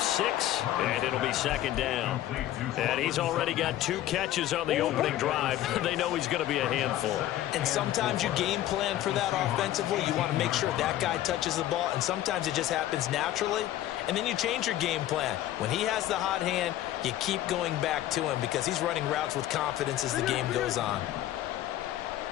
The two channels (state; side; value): quieter; right; 13.6 dB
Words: 6, and it'll be second down. And he's already got 2 catches on the opening drive. They know he's going to be a handful. And sometimes you game plan for that offensively. You want to make sure that guy touches the ball, and sometimes it just happens naturally. And then you change your game plan. When he has the hot hand, you keep going back to him because he's running routes with confidence as the game goes on.